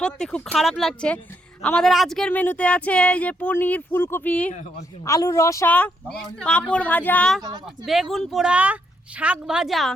সত্যি খুব খারাপ লাগছে। আমাদের আজকের মেনুতে আছে এই যে পনির, ফুলকপি, আলুর রসা, পাঁপড় ভাজা, বেগুন পোড়া, শাক ভাজা,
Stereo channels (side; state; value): both; normal; correlation 0.76